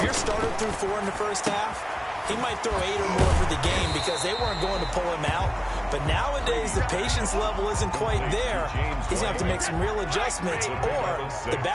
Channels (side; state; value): both; identical; correlation 1.00